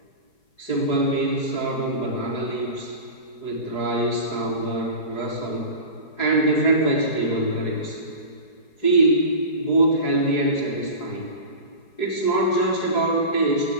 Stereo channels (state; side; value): late; right; 4.8 ms